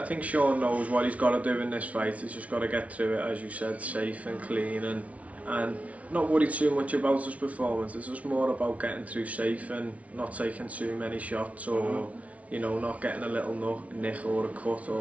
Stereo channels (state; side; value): late; left; 0.066 ms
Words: think Sean knows what he's got to do in this fight. He's just got to get through it, as you said, safe and clean, and not worry too much about his performance. It's just more about getting through safe and not taking too many shots, or you know, not getting a little nick or a cut